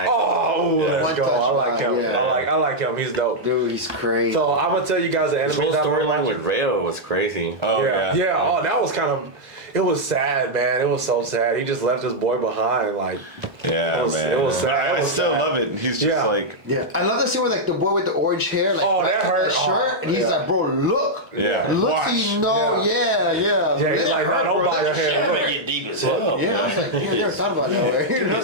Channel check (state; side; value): late; left; 1.3 ms